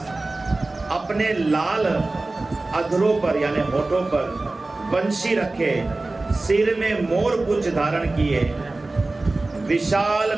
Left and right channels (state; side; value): quieter; left; 3.1 dB